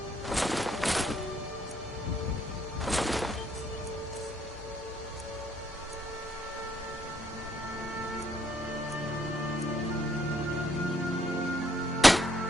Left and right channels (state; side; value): normal; both; correlation 0.70